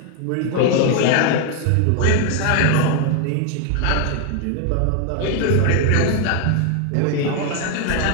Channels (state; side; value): different; both; correlation 0.01